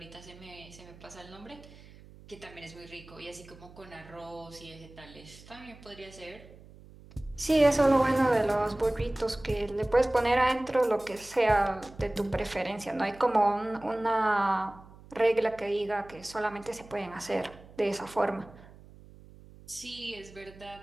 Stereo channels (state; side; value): noise; right; hum, 21 dB below the sound